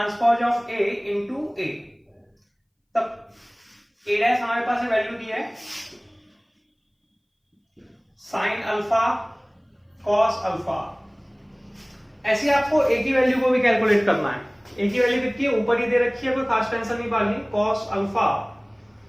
of A into A। तब A डैश हमारे पास वैल्यू दी है sin अल्फा cos अल्फा। ऐसे आपको A की वैल्यू को भी कैलकुलेट करना है। A की वैल्यू कितनी है, ऊपर ही दे रखी है, कोई खास टेंशन नहीं पालनी। cos alpha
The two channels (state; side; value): identical; both; correlation 1.00